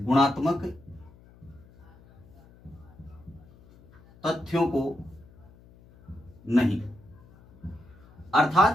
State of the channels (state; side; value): noise; left; hum, 25 dB below the sound